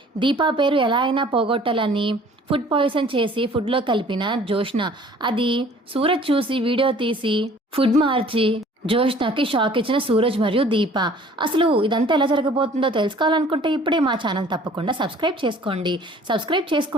దీపా పేరు ఎలా అయినా పోగొట్టాలని ఫుడ్ పాయిజన్ చేసి ఫుడ్లో కలిపిన జోష్న. అది సూరజ్ చూసి వీడియో తీసి ఫుడ్ మార్చి జోష్నాకి షాక్ ఇచ్చిన సూరజ్ మరియు దీప. అసలు ఇదంతా ఎలా జరగబోతుందో తెలుసుకోవాలనుకుంటే ఇప్పుడే మా ఛానల్ తప్పకుండా సబ్స్క్రైబ్ చేసుకోండి. సబ్స్క్రైబ్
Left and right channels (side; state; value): both; normal; correlation 0.52